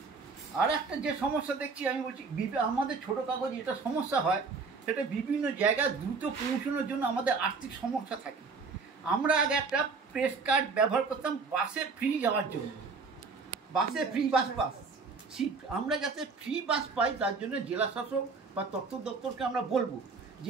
আর একটা যে সমস্যা দেখছি, আমি বলছি আমাদের ছোটো কাগজ এটা সমস্যা হয়, সেটা বিভিন্ন জায়গায় দ্রুত পৌঁছানোর জন্য আমাদের আর্থিক সমস্যা থাকে। আমরা আগে একটা প্রেস কার্ড ব্যবহার করতাম বাসে ফ্রি যাওয়ার জন্য, বাসে ফ্রি বাস সিট। আমরা যাতে ফ্রি বাস পাই তার জন্য জেলা শাসক বা তথ্য দপ্তরকে আমরা বলবো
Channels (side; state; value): left; quieter; 4.6 dB